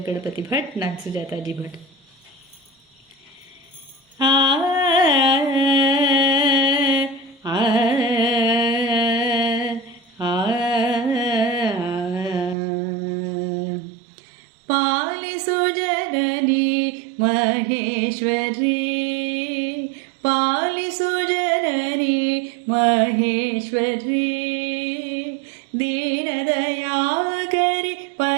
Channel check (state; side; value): drops out; left; at 12.6 s